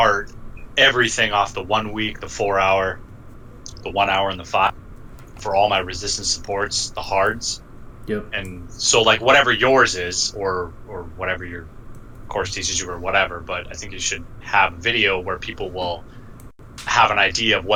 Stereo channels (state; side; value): identical; both; correlation 1.00